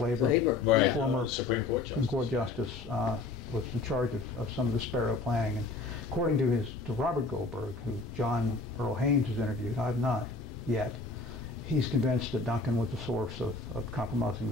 Right. Former Supreme Court Justice, was in charge of some of the Sparrow planning. And according to Robert Goldberg, who John Earl Haynes has interviewed, I've not yet, he's convinced that Duncan was the source of compromising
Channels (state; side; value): quieter; right; 3.7 dB